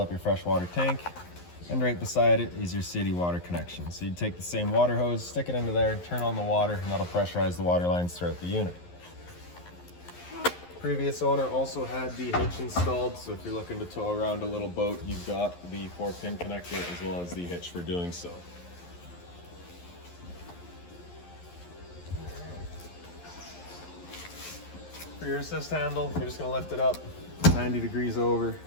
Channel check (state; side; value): late; right; 11 ms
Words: your fresh water tank. And right beside it is your city water connection. So you'd take the same water hose, stick it into there, turn on the water, and that'll pressurize the water lines throughout the unit. Previous owner also had the hitch installed, so if you're looking to tow around a little boat, you've got the 4-pin connector as well as the hitch for doing so. For your assist handle, you're just gonna lift it up 90 degrees over,